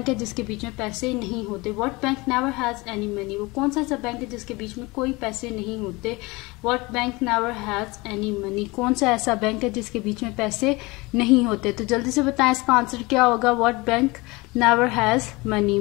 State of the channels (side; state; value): right; quieter; 23.8 dB